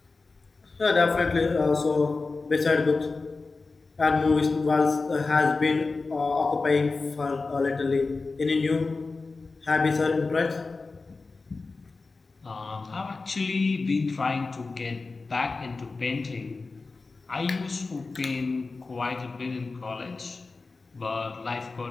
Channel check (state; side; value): quieter; right; 3.9 dB